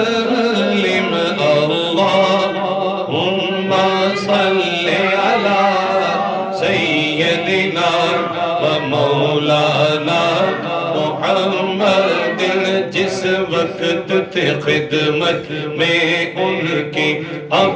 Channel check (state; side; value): identical; both; correlation 1.00